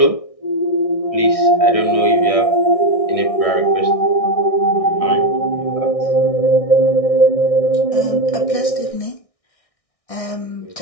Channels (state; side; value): late; right; 1.6 ms